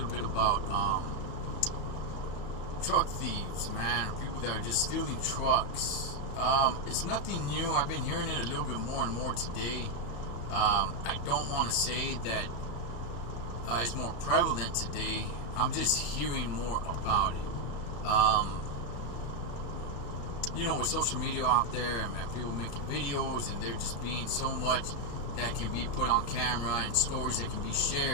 bit about truck thieves, man. People that are just stealing trucks. It's nothing new. I've been hearing it a little bit more and more today. I don't want to say that it's more prevalent today. I'm just hearing more about it. You know, with social media out there and people making videos, and there just being so much that can be put on camera and stories that can be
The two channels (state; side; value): late; right; 35 ms